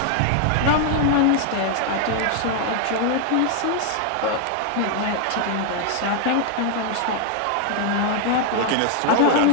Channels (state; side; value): different; both; correlation 0.00